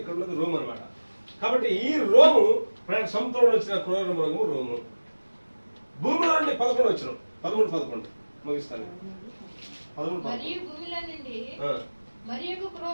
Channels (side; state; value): both; inverted; correlation -1.00